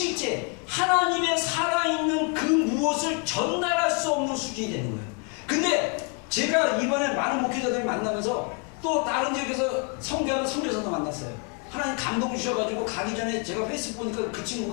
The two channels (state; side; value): quieter; right; 35.5 dB